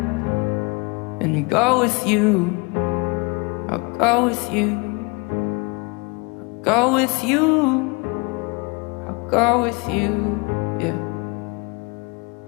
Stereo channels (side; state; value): right; quieter; 28.6 dB